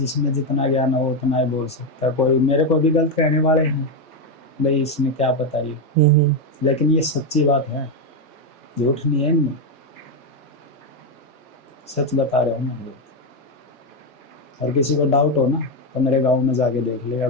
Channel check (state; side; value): normal; both; correlation 0.06